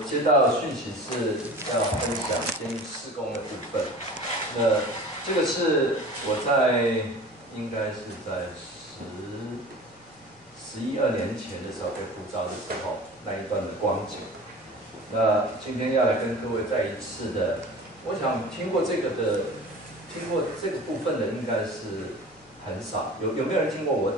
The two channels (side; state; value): both; normal; correlation 0.39